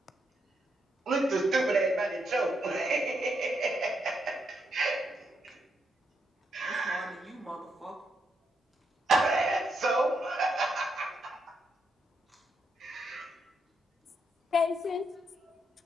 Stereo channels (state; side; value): normal; both; correlation 0.80